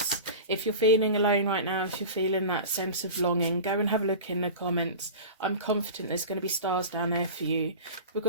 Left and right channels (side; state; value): both; inverted; correlation -0.32